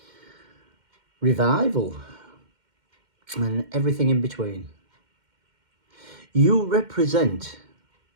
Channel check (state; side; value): late; left; 2.1 ms